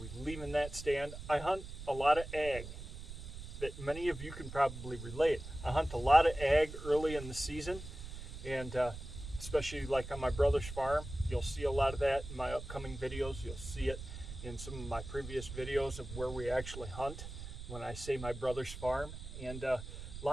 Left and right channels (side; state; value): right; noise; rumble, 10 dB below the sound